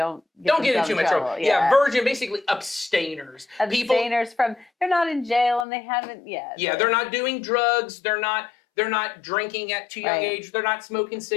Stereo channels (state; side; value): drops out; right; at 5.7 s